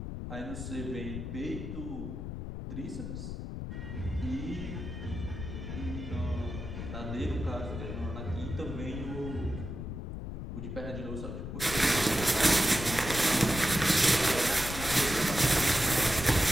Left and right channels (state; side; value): noise; left; rumble, 7 dB below the sound